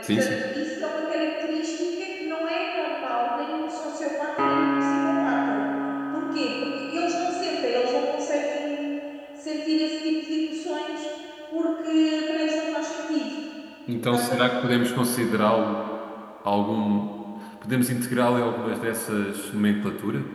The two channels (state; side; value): identical; both; correlation 1.00